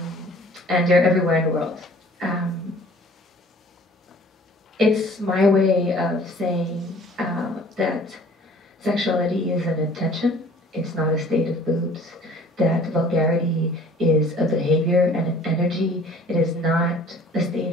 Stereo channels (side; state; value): both; normal; correlation 0.51